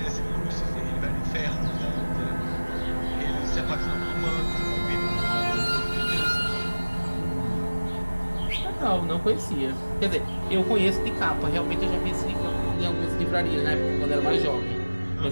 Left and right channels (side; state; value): both; inverted; correlation -1.00